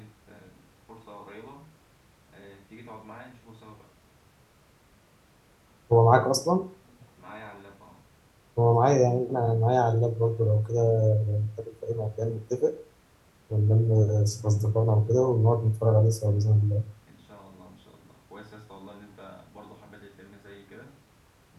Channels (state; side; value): identical; both; correlation 1.00